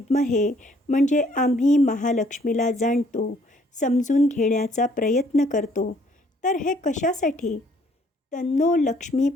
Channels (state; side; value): normal; both; correlation 0.63